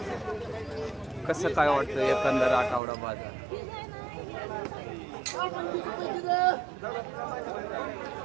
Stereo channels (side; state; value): left; drops out; at 2.8 s